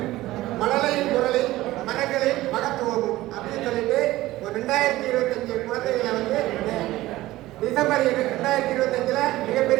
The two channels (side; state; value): left; quieter; 16.9 dB